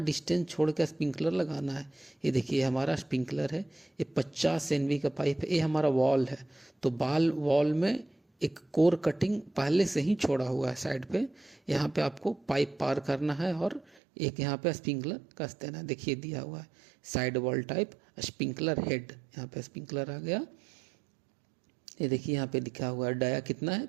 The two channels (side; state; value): left; drops out; at 14.0 s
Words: डिस्टेंस छोड़ कर स्प्रिंकलर लगाना है। ये देखिए हमारा स्प्रिंकलर है, ये 50 NV का पाइप है, ये हमारा वॉल है। तो वॉल में एक कोर कटिंग पहले से ही छोड़ा हुआ है साइड पे, यहाँ पे आपको पाइप पार करना है और एक यहाँ पे स्प्रिंकलर कस देना है। देखिए दिया हुआ है side wall type sprinkler head, यहाँ पे स्प्रिंकलर आ गया। ये देखिए यहाँ पे लिखा हुआ है डाया कितना है